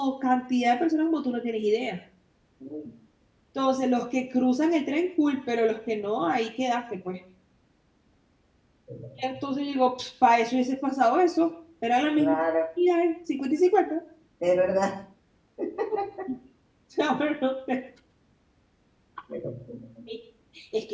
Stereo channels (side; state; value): both; identical; correlation 1.00